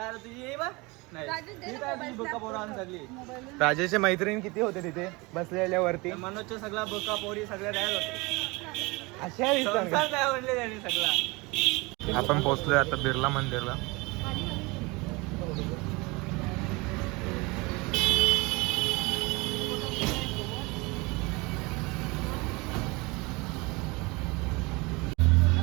नाही. राजेशच्या मैत्रीण किती होते तिथे बसलेल्यावरती? मनोजच्या सगळा बोका पोरी सगळ्या तयार होते. अशा दिसतात काय म्हणले त्यांनी सगळा. आपण पोहोचलोय आता बिर्ला मंदिरला.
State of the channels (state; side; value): quieter; left; 25.3 dB